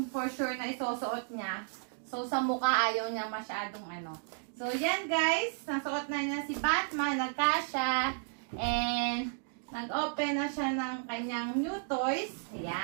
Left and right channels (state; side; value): silent; left; digital silence